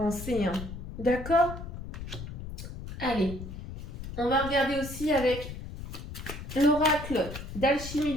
Hein. D'accord ? Allez, on va regarder aussi avec l'oracle d'alchimie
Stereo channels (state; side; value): noise; left; rumble, 9 dB below the sound